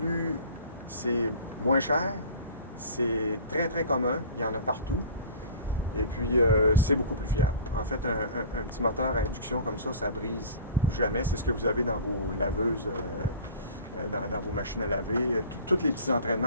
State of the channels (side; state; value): both; inverted; correlation -0.42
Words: C'est moins cher, c'est très commun, il y en a partout. Et puis, c'est beaucoup plus fiable. En fait, un petit moteur à induction comme ça brise jamais. C'est ce que vous avez dans vos laveuses, dans vos machines à laver. Tous les petits